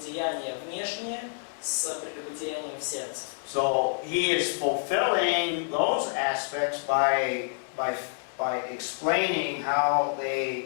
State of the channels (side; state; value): right; silent; digital silence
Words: внешнее с прелюбодеянием в сердце. So he is fulfilling those aspects by explaining how